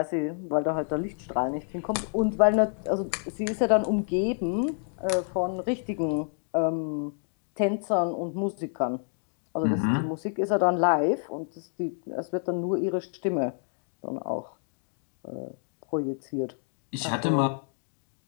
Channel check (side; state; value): right; silent; 59 dB below the other